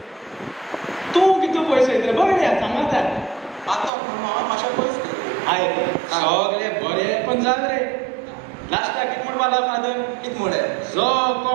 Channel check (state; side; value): drops out; left; at 3.9 s